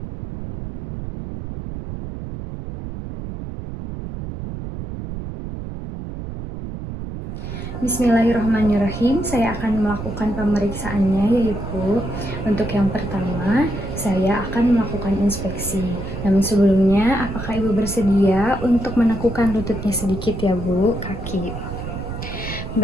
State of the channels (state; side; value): noise; right; rumble, 8 dB below the sound